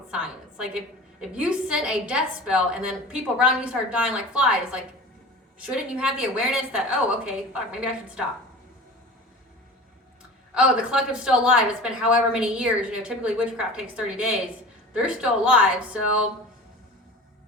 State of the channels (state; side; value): normal; both; correlation 0.37